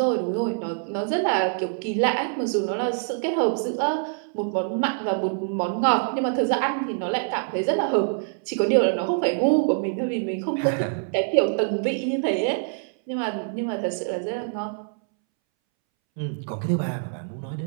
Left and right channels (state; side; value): silent; left; 62 dB below the other